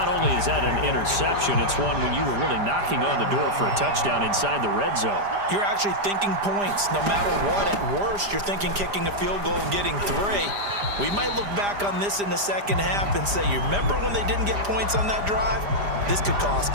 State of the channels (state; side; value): late; left; 5.0 ms